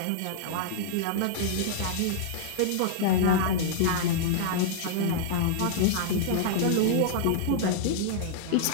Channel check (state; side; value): different; both; correlation -0.01